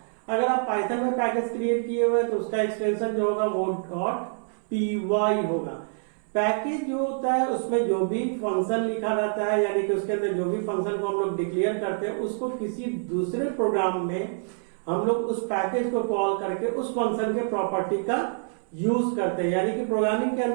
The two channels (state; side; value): silent; left; 61 dB below the other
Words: अगर आप पाइथन में पैकेज क्रिएट किए हुए तो उसका एक्सटेंशन जो होगा वो .py होगा। पैकेज जो होता है उसमें जो भी फंक्शन लिखा रहता है यानी कि उसके अंदर जो भी फंक्शन को हम लोग डिक्लेयर करते हैं उसको किसी दूसरे प्रोग्राम में हम लोग उस पैकेज को कॉल करके उस फंक्शन के प्रॉपर्टी का यूज करते हैं। यानी कि प्रोग्रामिंग के